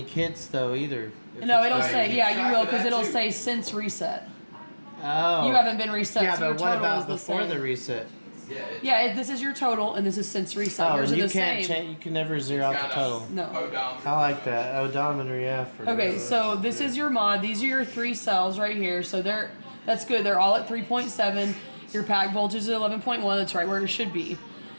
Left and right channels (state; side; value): inverted; both; correlation -1.00